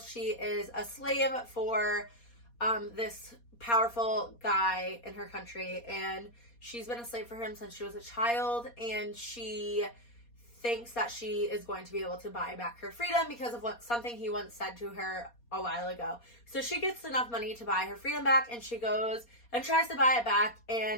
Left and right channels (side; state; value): right; late; 4.2 ms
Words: is a slave for this powerful guy in her country, and she's been a slave for him since she was a child, and she thinks that she is going to be able to buy back her freedom because of something he once said to her a while ago. So she gets enough money to buy her freedom back, and she goes and tries to buy it back,